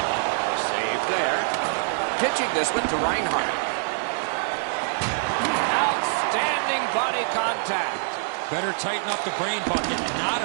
Saved there. Pitching this one to Reinhart. Outstanding body contact. Better tighten up the brain bucket. Not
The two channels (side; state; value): left; silent; 61 dB below the other